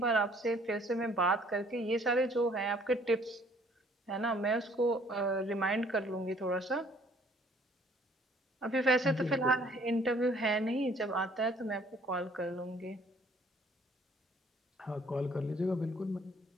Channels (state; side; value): normal; both; correlation 0.59